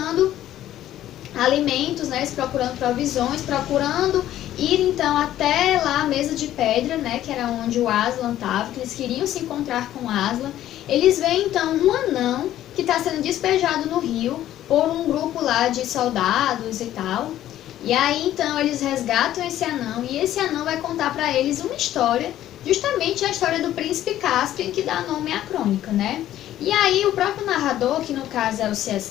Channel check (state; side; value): quieter; right; 12.7 dB